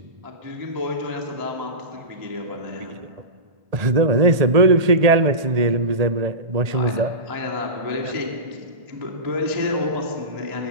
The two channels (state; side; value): late; left; 1.8 ms